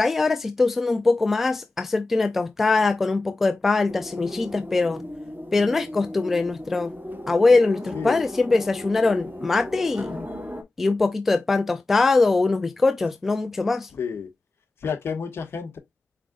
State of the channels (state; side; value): quieter; right; 3.1 dB